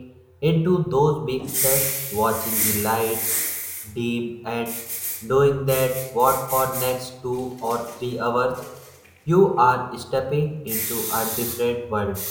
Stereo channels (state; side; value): identical; both; correlation 1.00